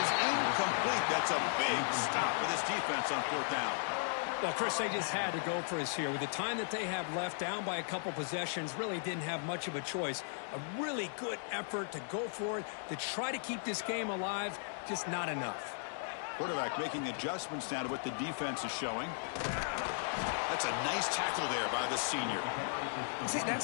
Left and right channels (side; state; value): right; silent; digital silence